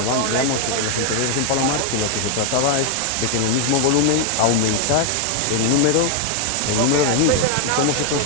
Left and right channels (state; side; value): different; both; correlation 0.00